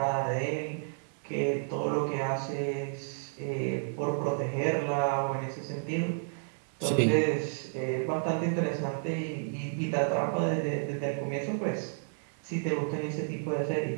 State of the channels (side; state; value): left; silent; digital silence